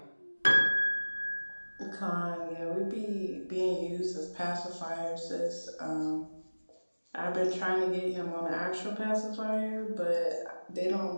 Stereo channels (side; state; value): both; inverted; correlation -1.00